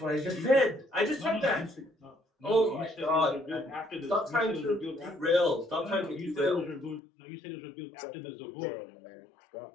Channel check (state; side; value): drops out; right; at 7.0 s